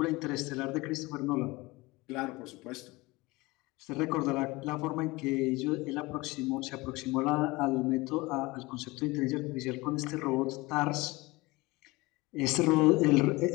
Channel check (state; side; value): quieter; right; 22.3 dB